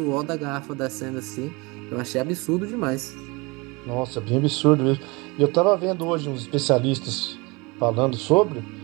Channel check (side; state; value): left; quieter; 26.0 dB